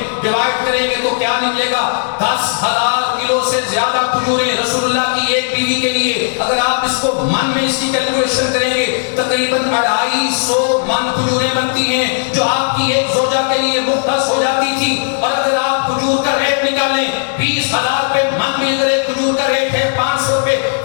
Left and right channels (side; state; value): right; silent; digital silence